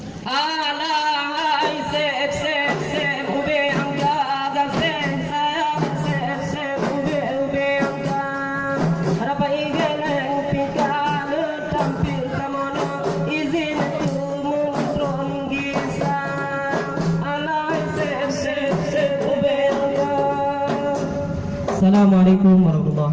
Alahai sep sep sep ube angga gasen sayang sep sep ube angga harapa igeleng pika le tampil kamono izin tu muntron gisa alahai sep sep sep ube angga. Assalamualaikum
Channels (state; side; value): identical; both; correlation 1.00